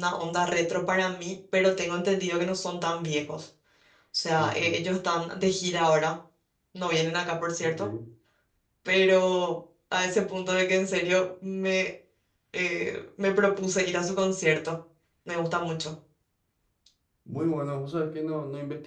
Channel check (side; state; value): both; identical; correlation 1.00